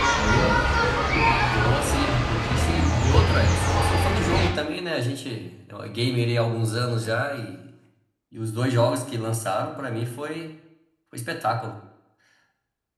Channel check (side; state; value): both; identical; correlation 1.00